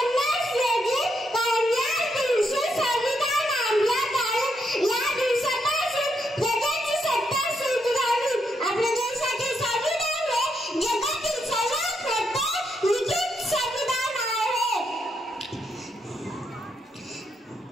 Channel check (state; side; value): normal; both; correlation 0.79